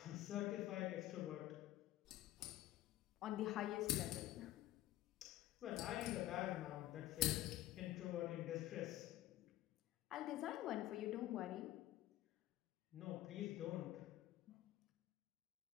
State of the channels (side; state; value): right; quieter; 14.6 dB